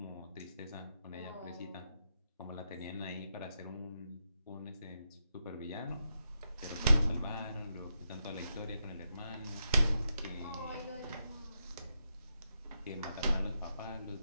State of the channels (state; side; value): inverted; both; correlation -0.85